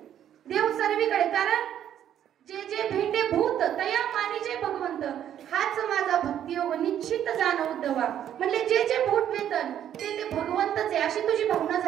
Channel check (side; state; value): left; quieter; 10.4 dB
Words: देव सर्वीकडे. कारण जे जे भेटे भूत तया मानिजे भगवंत, हाच माझा भक्ती योग निश्चित जाण उद्धवा. म्हणजे जे जे भूत वेतन ते ते भगवंतच आहे, अशी तुझी भावना